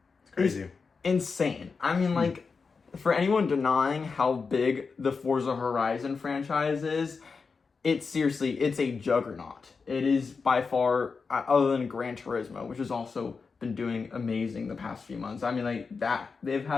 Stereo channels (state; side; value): quieter; right; 4.9 dB